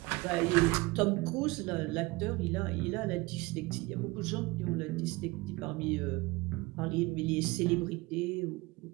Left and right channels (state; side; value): quieter; left; 22.7 dB